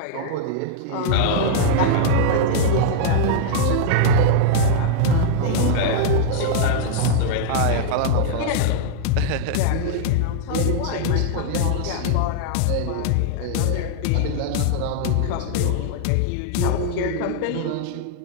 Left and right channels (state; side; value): different; both; correlation -0.01